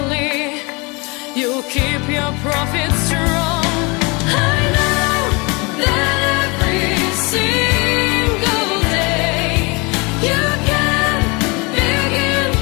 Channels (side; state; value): right; quieter; 28.0 dB